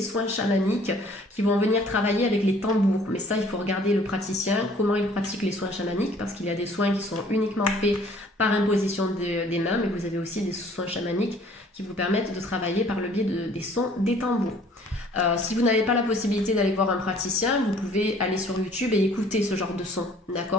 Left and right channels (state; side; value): normal; both; correlation 0.56